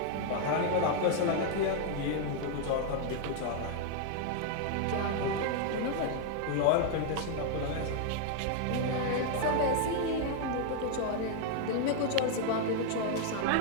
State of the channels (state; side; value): different; both; correlation 0.00